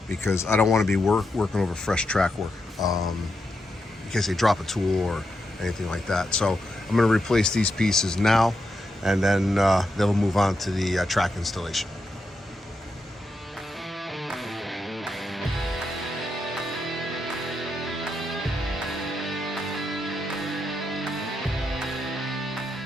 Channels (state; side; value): normal; both; correlation 0.84